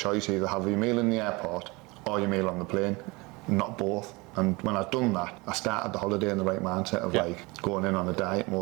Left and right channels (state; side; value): quieter; left; 24.8 dB